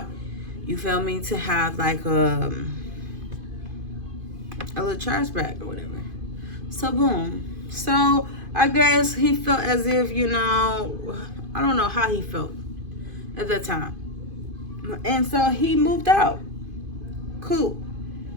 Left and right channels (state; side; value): late; left; 2.5 ms